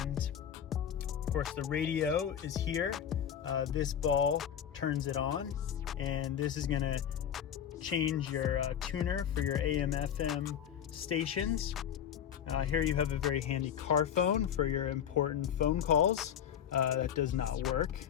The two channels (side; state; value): right; quieter; 9.1 dB